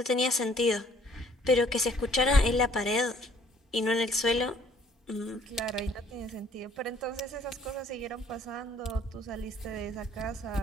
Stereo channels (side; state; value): both; normal; correlation 0.59